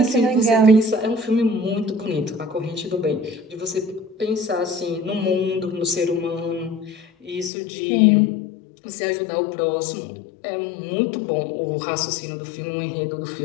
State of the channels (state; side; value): drops out; right; at 7.5 s